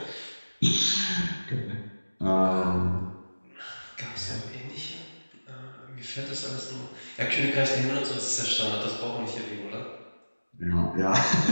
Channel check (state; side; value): inverted; both; correlation -1.00